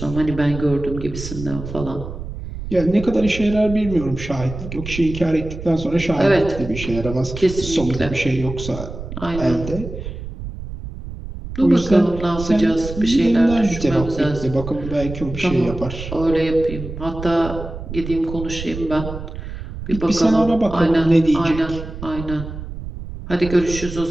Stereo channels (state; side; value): noise; right; rumble, 9 dB below the sound